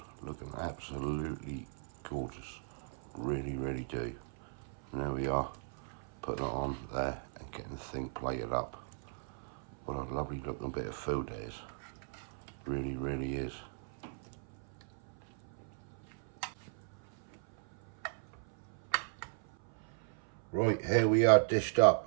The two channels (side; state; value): left; silent; 53 dB below the other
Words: looking absolutely gorgeous. Really, really do. And there we are, putting it on there and getting the thing plated up. What a lovely looking bit of food it is. Really, really is. Right, here we are dished